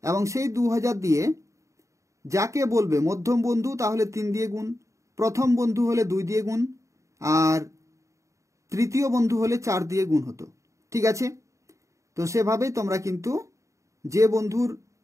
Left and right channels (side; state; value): left; late; 0.15 ms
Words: এবং সেই 2,000 দিয়ে যাকে বলবে মধ্যম বন্ধু তাহলে 3 দিয়ে গুণ, প্রথম বন্ধু হলে 2 দিয়ে গুণ, আর তৃতীয় বন্ধু হলে 4 দিয়ে গুণ হতো, ঠিক আছে? তো সেভাবেই তোমরা কিন্তু যে বন্ধুর